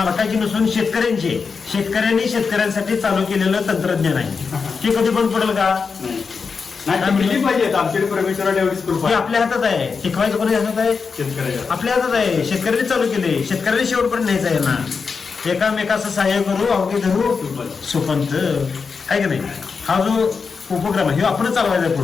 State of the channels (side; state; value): right; quieter; 5.2 dB